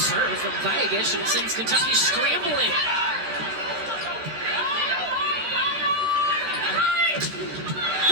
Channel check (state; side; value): late; left; 14 ms